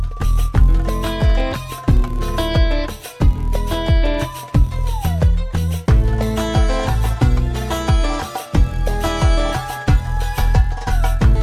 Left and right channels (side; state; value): both; identical; correlation 1.00